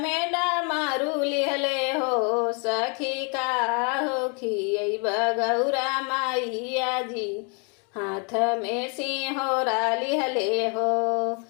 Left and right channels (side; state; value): right; quieter; 36.4 dB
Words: डामारू लिहले हो। सखी काहो खियब गौरा माइया जी, हाथ में सिंहोरा लिहले हो।